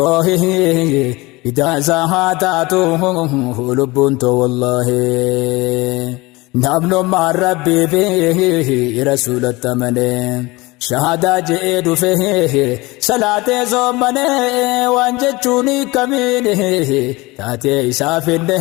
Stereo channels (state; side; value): quieter; right; 22.5 dB